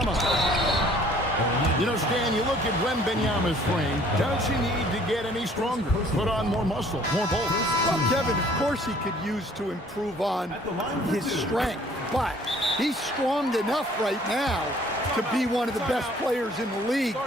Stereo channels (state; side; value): normal; both; correlation 0.56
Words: You know, Stan, you look at Wembanyama's frame. Does he need to get any stronger? Put on more muscle, more bulk? Well, Kevin, of course he could use to improve on his strength, but he's strong enough right now to be one of the best players in the league.